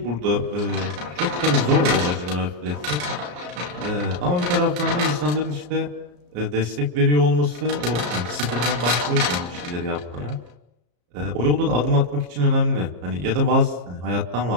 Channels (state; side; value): late; left; 34 ms